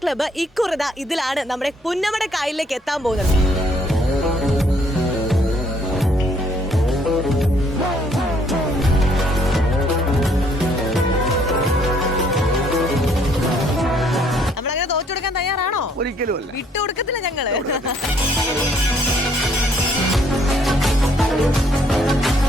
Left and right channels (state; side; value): normal; both; correlation 0.66